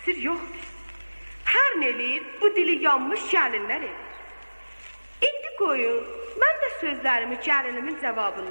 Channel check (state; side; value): inverted; both; correlation -1.00